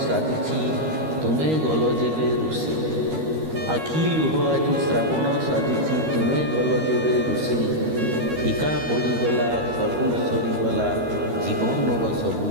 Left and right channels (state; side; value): late; left; 13 ms